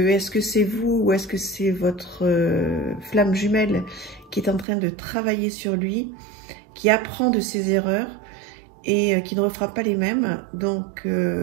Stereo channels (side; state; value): left; drops out; at 4.7 s